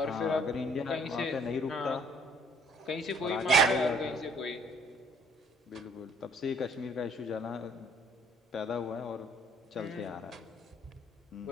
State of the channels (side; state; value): both; normal; correlation 0.59